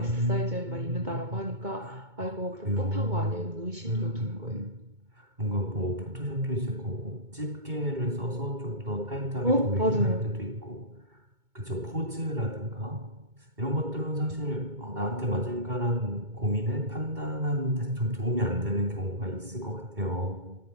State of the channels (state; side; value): late; left; 2.2 ms